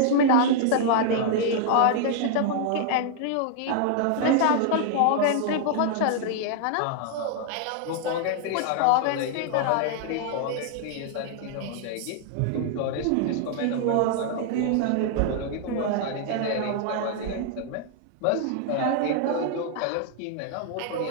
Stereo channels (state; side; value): different; both; correlation 0.00